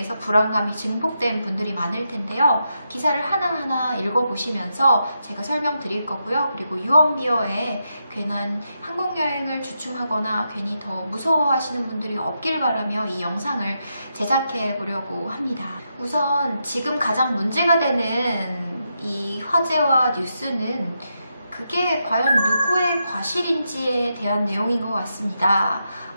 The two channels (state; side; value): inverted; both; correlation -0.84